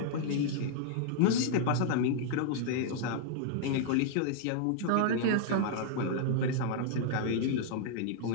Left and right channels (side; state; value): both; different; correlation -0.01